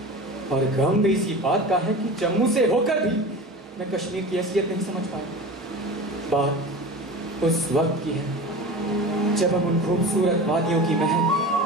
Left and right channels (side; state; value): both; normal; correlation 0.33